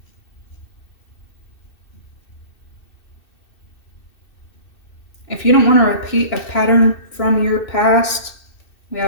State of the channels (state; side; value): late; right; 2.6 ms